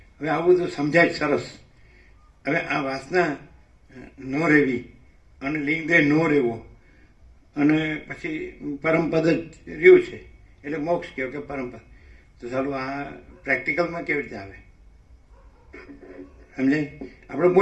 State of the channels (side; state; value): both; identical; correlation 1.00